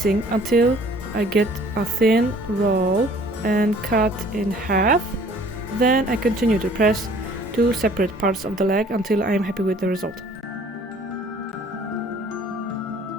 until I get a thin roll and cut in half. Then I continue to press 2 separate parts of the leg until I am happy with the result.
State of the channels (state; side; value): normal; both; correlation 0.54